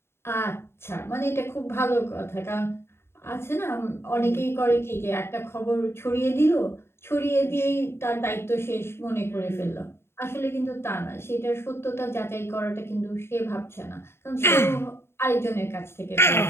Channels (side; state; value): right; late; 0.12 ms